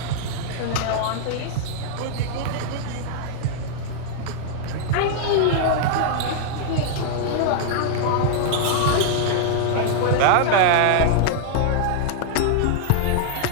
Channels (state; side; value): different; both; correlation -0.01